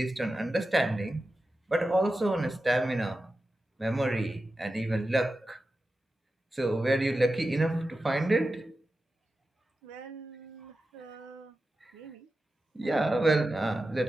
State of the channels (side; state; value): both; normal; correlation 0.92